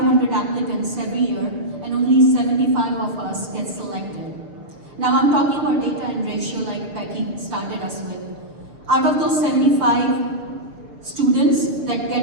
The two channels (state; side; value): late; left; 6.7 ms